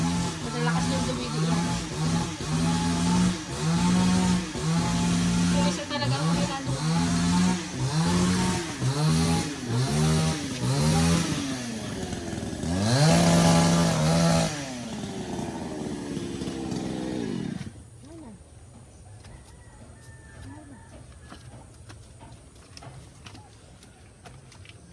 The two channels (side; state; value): both; identical; correlation 1.00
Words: Malalakas yung dumidi yan. Yung isa talaga ang mahina.